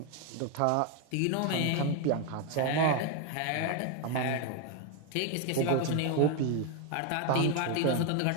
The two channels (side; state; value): both; different; correlation 0.01